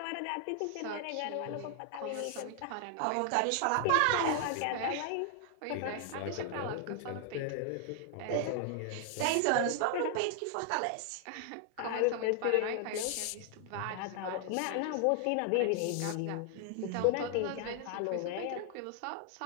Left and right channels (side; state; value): both; different; correlation 0.00